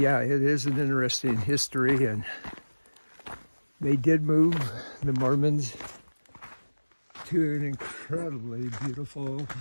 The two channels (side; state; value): both; inverted; correlation -1.00